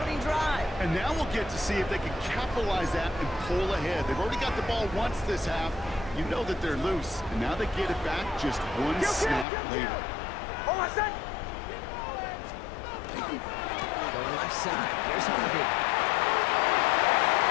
drive. And now we'll get to see if they can capitalize that and pull ahead. They've already got the ball once this half. You know that they're loose, and now they get it back just one snap later. Hold on a sec. Going left side. Here's Harvey.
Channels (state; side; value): drops out; right; at 9.5 s